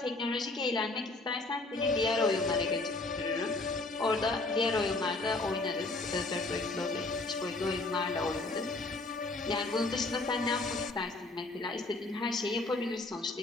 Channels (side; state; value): right; quieter; 3.1 dB